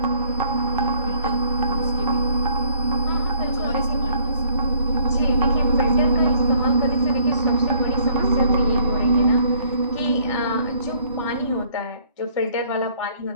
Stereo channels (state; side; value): inverted; both; correlation -0.63